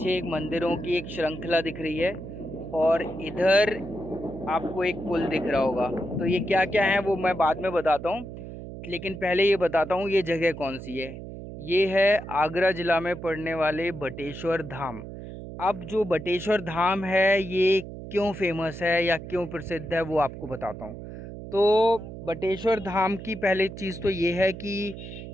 एक मंदिरों की एक श्रृंखला दिख रही है। और इधर आपको एक पुल दिख रहा होगा। तो ये क्या क्या है वो मैं बाद में बताता हूँ, लेकिन पहले ये बताता हूँ ये जगह कौन सी है। ये है आगरा ज़िला में पड़ने वाले बटेश्वर धाम। अब जो बटेश्वर धाम है ये क्यों फेमस है या क्यों प्रसिद्ध है वो आपको बताता हूँ। तो बटेश्वर धाम की पहली चीज़ तो ये है कि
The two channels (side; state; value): right; noise; hum, 11 dB below the sound